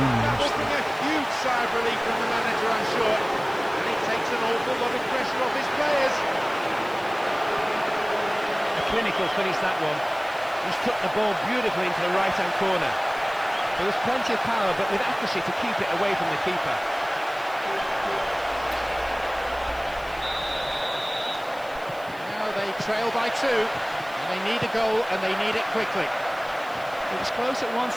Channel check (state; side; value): noise; right; hiss, 23 dB below the sound